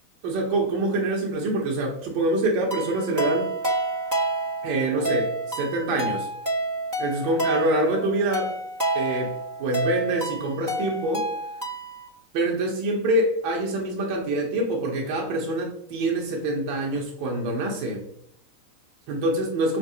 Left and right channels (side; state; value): left; late; 3.9 ms